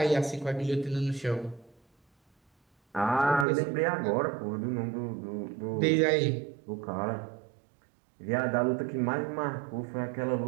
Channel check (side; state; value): left; drops out; at 3.5 s